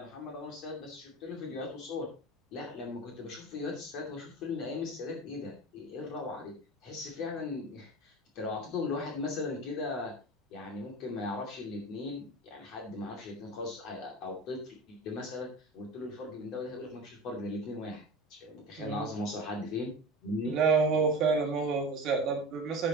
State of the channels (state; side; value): normal; both; correlation 0.30